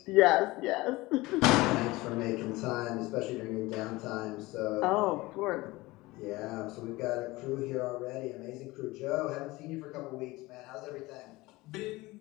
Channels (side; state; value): right; quieter; 20.6 dB